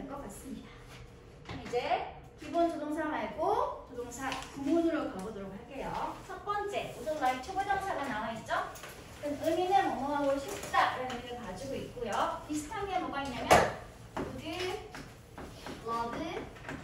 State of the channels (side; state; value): both; identical; correlation 1.00